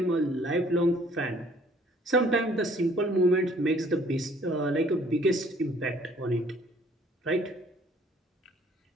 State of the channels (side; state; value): both; normal; correlation 0.59